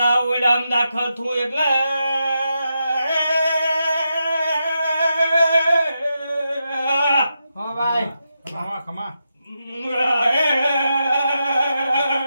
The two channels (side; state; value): both; inverted; correlation -0.86